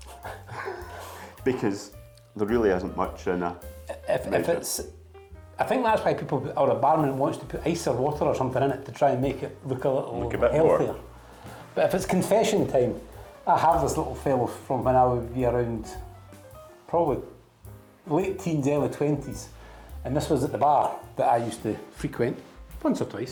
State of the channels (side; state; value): both; identical; correlation 1.00